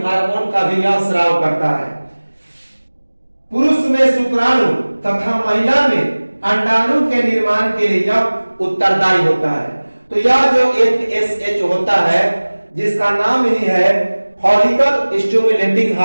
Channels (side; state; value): both; inverted; correlation -1.00